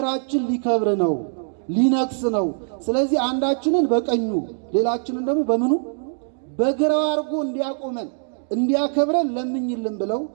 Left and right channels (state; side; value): silent; left; 61 dB below the other